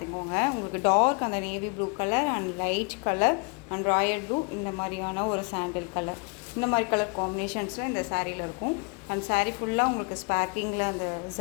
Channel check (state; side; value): quieter; right; 33.3 dB